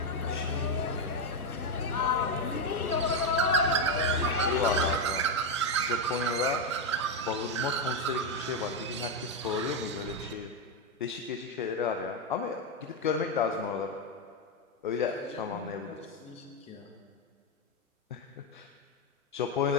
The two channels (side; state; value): both; normal; correlation 0.05